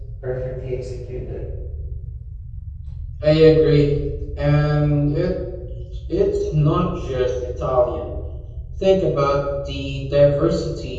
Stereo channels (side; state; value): both; identical; correlation 1.00